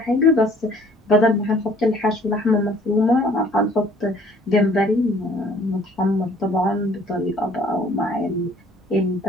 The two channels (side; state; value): both; normal; correlation 0.56